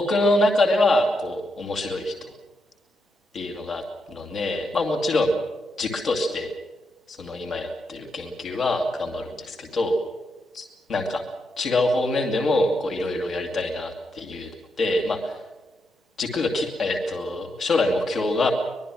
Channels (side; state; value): both; normal; correlation 0.82